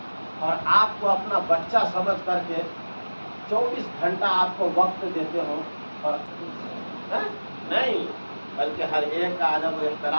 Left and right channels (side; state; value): both; inverted; correlation -1.00